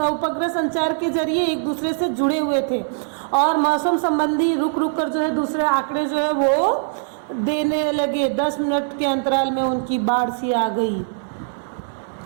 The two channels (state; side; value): silent; left; digital silence